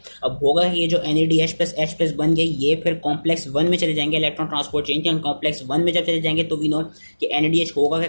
अब होगा ये जो NADH+H+ बन गया ये फिर कॉम्प्लेक्स 1 में चले जाएंगे इलेक्ट्रॉन ट्रांसपोर्ट चेन के। कॉम्प्लेक्स 1 में जब चले जाएंगे तो वी नो कि NADH होगा कि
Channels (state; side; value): inverted; both; correlation -1.00